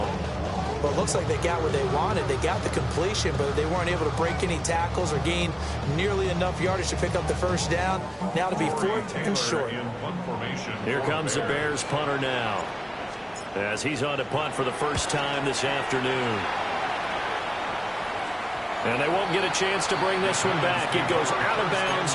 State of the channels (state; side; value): identical; both; correlation 1.00